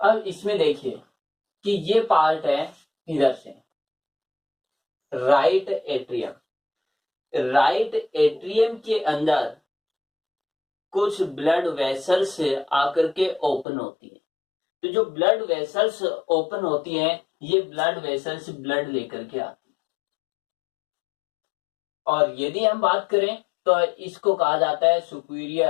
इसमें देखिए कि ये पार्ट है इधर से राइट एट्रियम, राइट एट्रियम के अंदर कुछ ब्लड वेसल्स आकर के ओपन होती है। तो जो ब्लड वेसल्स ओपन होती हैं, ये ब्लड वेसल्स ब्लड लेकर के आती है। और यदि हम बात करें तो इसको कहा जाता है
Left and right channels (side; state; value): right; drops out; at 13.7 s